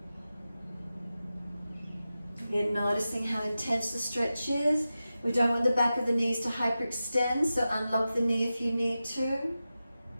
Again, noticing how intense the stretch is. We don't want the back of the knees to hyperextend, so unlock the knee if you need to.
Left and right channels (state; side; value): inverted; both; correlation -0.93